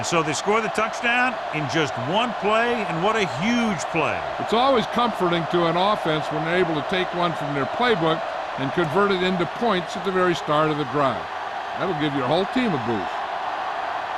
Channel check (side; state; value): both; identical; correlation 1.00